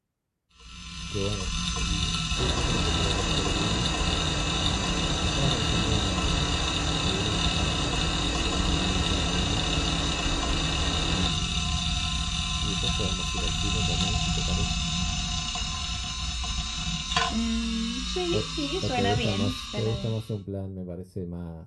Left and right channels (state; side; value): identical; both; correlation 1.00